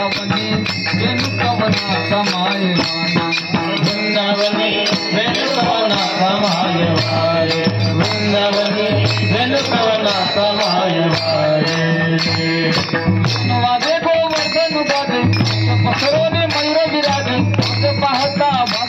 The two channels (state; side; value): identical; both; correlation 1.00